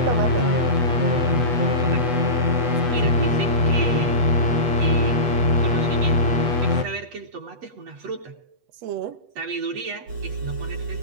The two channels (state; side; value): late; left; 8.2 ms